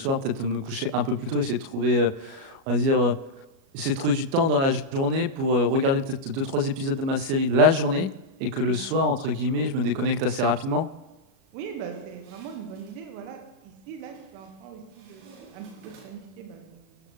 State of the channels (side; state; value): left; late; 37 ms